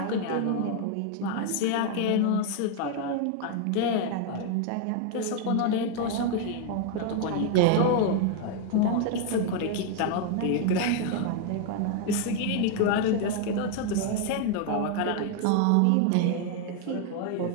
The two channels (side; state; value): both; different; correlation 0.00